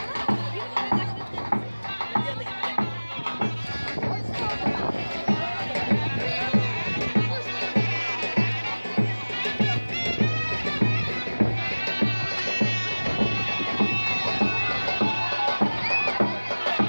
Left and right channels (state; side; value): inverted; both; correlation -1.00